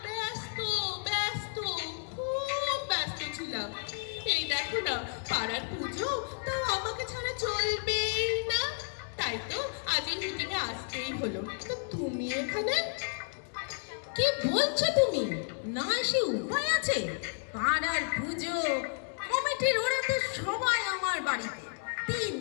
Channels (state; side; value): silent; right; 56 dB below the other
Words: ব্যস্ত ব্যস্ত, খুব ব্যস্ত ছিলাম। এই দেখো না, পাড়ার পুজো, তাও আমাকে ছাড়া চলবেই না। তাই তো আজ এই মিটিংয়ে আসতেই হলো। তো তুমি এখানে? কি বলছো তুমি? না এসে উপায় আছে? পাড়ার পুজো কমিটির ওরা তো সবাই আমার বাড়িতে 3